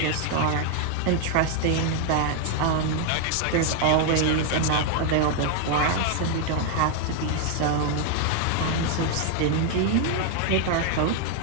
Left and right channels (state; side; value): different; both; correlation 0.00